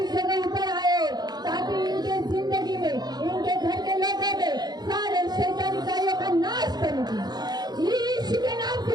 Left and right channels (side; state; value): left; late; 0.20 ms